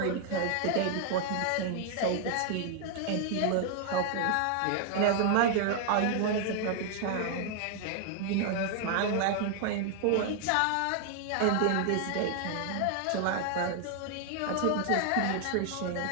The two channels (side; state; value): both; different; correlation 0.00